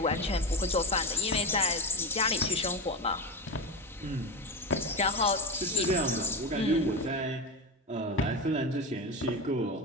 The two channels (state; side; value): normal; both; correlation 0.21